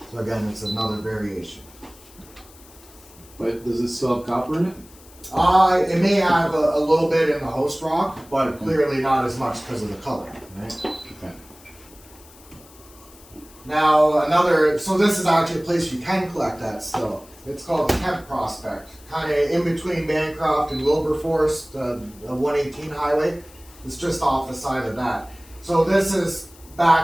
So again, it's another variation. But does it still have copper in it? It may have a little bit in the host rock, but clearly not as much because of the color, right? Okay. Now, so this is actually a place you can collect that still. It's called the Kemp Prospect, kind of in between Bancroft and Wilberforce, the 118 highway. It's just off the side of that. So this is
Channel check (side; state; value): left; noise; hiss, 24 dB below the sound